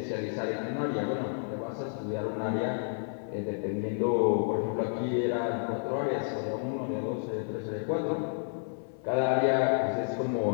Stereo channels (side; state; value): right; silent; 57 dB below the other